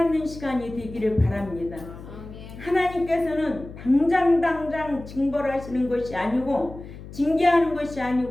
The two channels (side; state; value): left; noise; hum, 14 dB below the sound